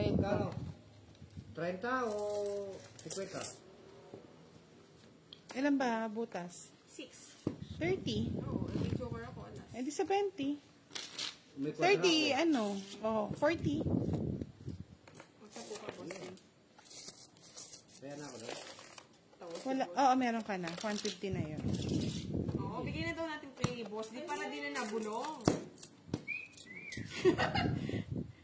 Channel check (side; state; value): both; identical; correlation 1.00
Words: ko. Kano? 30 o 50? Ilan ba butas? 6. 30. Oo, naging joker ako. Alas. Eh di sa 20. May kwatra 30, ako. ano? Oh, 40. Magtapo ka, Boss D. Kaya na ako doon. Tawag si Wala. Boss. Oo, meron ka na. 150 na yun. Oo, bigyan na daw natin kay Boss D para di na nabulong.